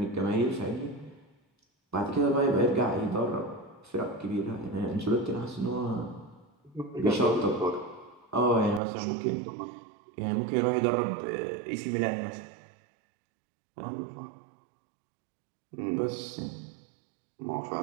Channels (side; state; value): left; drops out; at 8.8 s